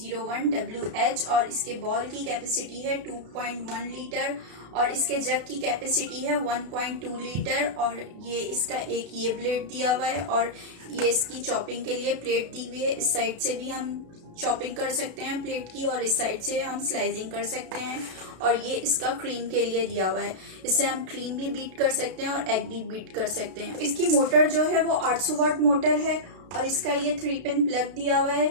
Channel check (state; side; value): late; left; 32 ms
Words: और इसके बॉल की कैपेसिटी है 2.1 लीटर और इसके जग की कैपेसिटी है 1.2 लीटर। और ये इसका एक ये ब्लेड दिया हुआ है और ये इसकी चॉपिंग के लिए प्लेट दी हुई है। इस साइड से भी हम चॉपिंग कर सकते हैं प्लेट की और इस साइड से हम स्लाइसिंग कर सकते हैं। और ये इसका क्रीम के लिए दिया हुआ है, इससे हम क्रीम भी बीट कर सकते हैं और एग भी बीट कर सकते हैं। इसकी मोटर जो है वो 800 वाट मोटर है और इसका ये 3 पिन प्लग दिया हुआ